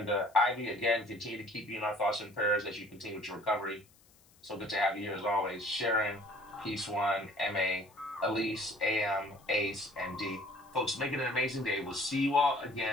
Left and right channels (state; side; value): noise; left; hiss, 29 dB below the sound